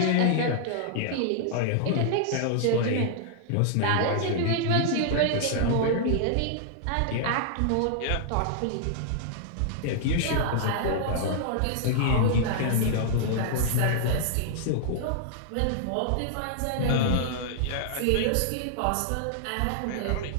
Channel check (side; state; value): both; different; correlation -0.01